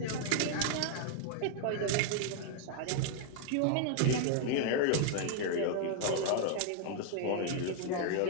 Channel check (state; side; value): different; both; correlation 0.00